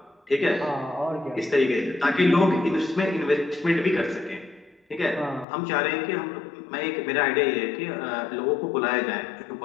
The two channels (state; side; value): drops out; right; at 5.5 s